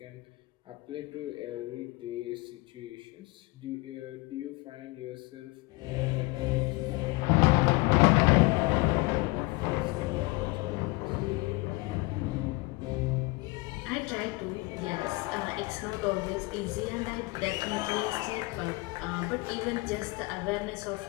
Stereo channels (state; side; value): quieter; right; 24.1 dB